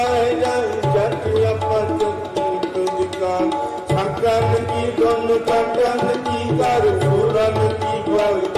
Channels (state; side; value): identical; both; correlation 1.00